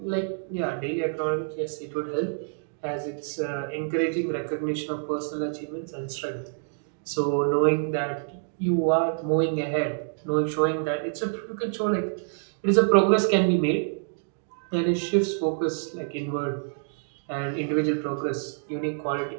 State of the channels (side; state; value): left; silent; digital silence